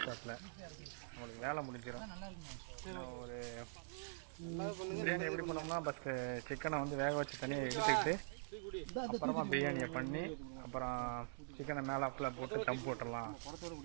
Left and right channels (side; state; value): left; silent; digital silence